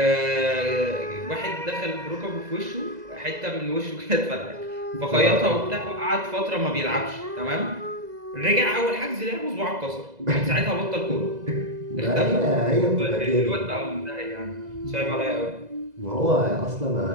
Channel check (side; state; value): left; late; 2.0 ms